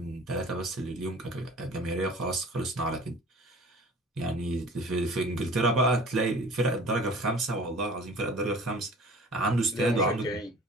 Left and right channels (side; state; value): both; normal; correlation 0.45